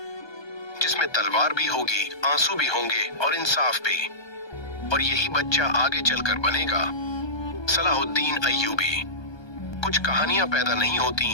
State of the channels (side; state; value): right; late; 1.2 ms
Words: जिसमें तलवार भी होगी, आंसू भी होंगे और इंसाफ भी। और यही बच्चा आगे चलकर बनेगा सलाहुद्दीन अय्यूबी। कुछ कहानियां पैदा नहीं